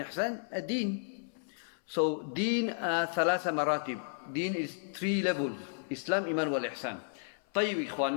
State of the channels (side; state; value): right; silent; 56 dB below the other